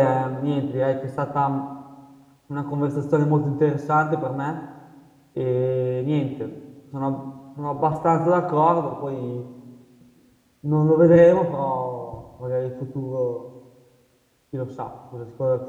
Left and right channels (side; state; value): both; identical; correlation 1.00